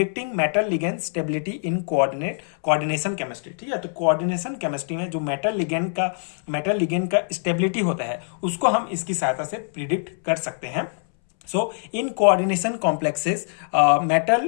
metal ligand stability in coordination chemistry. ठीक है, तो कोऑर्डिनेशन केमिस्ट्री में जो मेटल लिगेंड का स्टेबिलिटी होता है उसको हम इसकी सहायता से प्रिडिक्ट कर सकते हैं। So in coordination complexes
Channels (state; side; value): silent; right; 63 dB below the other